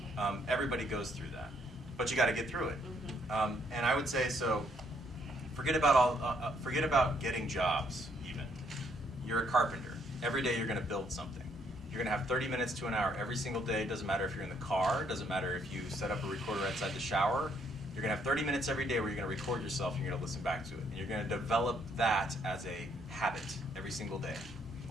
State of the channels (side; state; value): both; normal; correlation 0.70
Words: Everybody goes through that. But you got to get through it. And I would say, so forget about getting jobs even. You're a carpenter. Every day you're going to build something. You're going to have 30 minutes to an hour every single day. Doesn't matter if you're in the car. Doesn't matter if you set up a recorder outside the shower. You're going to have 30 minutes every day where you're going to record yourself and you're going to listen back to it. And you're going to develop that as a habit every single day.